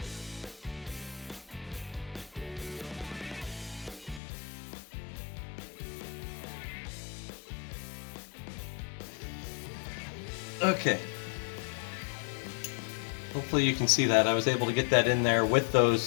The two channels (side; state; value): right; drops out; at 4.2 s